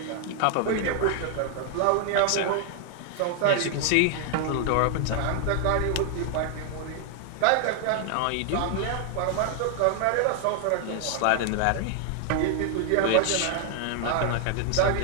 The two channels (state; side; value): different; both; correlation 0.00